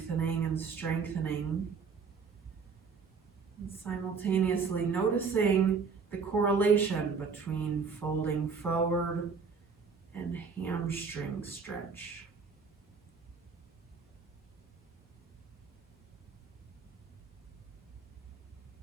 and strengthening. And simultaneously noticing the correlation between folding forward and hamstring stretch.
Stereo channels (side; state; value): left; quieter; 5.4 dB